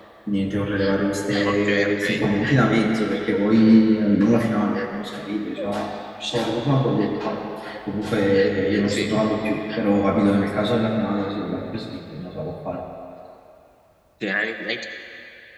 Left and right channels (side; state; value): both; identical; correlation 1.00